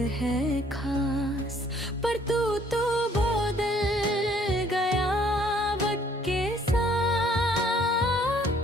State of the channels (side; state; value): both; normal; correlation 0.62